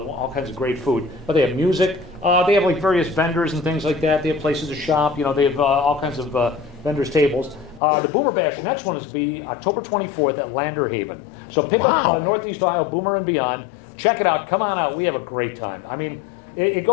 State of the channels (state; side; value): drops out; right; at 7.8 s